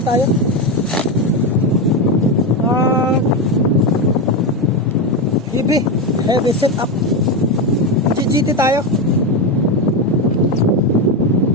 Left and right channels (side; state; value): both; normal; correlation 0.12